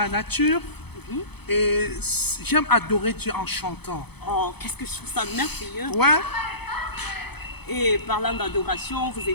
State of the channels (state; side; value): late; right; 0.98 ms